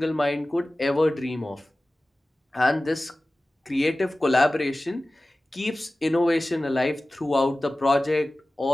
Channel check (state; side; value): normal; both; correlation 0.97